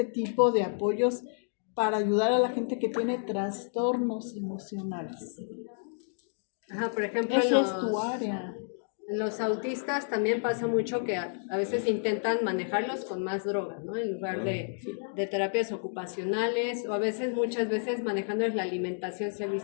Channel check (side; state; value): right; silent; digital silence